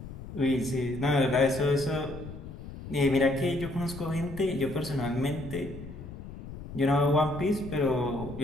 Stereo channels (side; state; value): left; noise; rumble, 12 dB below the sound